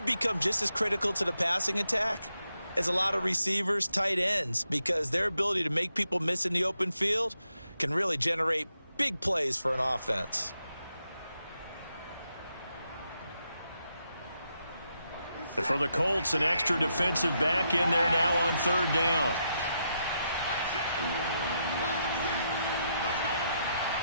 just as critical to the passing attack as a lot of receivers, tight ends, because their ability to make people miss in the open field can really generate big plays for an offense. For the Colts, an extra defensive back in there now on third down.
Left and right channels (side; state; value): both; inverted; correlation -0.82